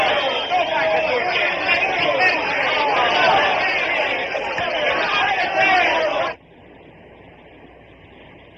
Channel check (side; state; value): both; identical; correlation 1.00